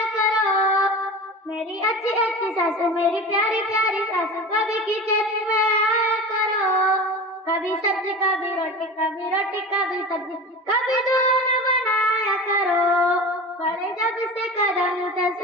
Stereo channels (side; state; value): both; normal; correlation 0.32